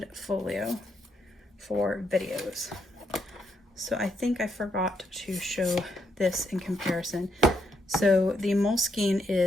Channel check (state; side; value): normal; both; correlation 0.77